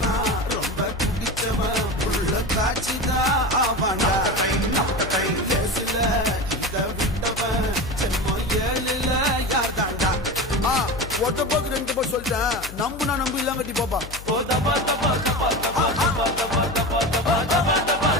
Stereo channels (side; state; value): left; noise; hum, 14 dB below the sound